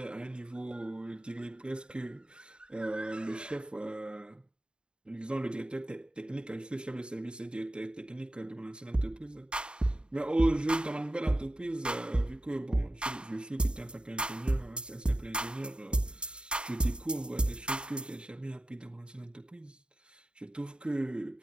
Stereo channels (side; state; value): left; late; 0.050 ms